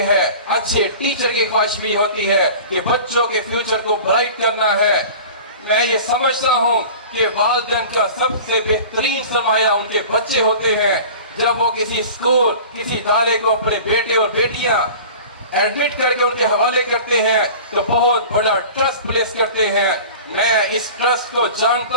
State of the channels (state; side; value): inverted; both; correlation -0.39